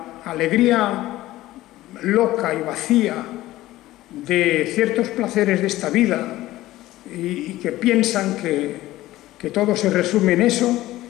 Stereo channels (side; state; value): right; quieter; 16.3 dB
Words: alegría loca y vacía de ciertos placeres de esta vida y que piensan que todo se resume en eso,